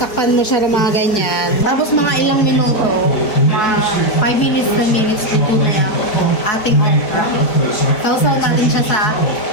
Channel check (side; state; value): right; late; 4.7 ms